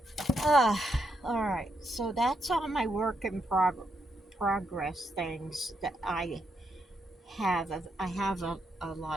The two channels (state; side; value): normal; both; correlation 0.80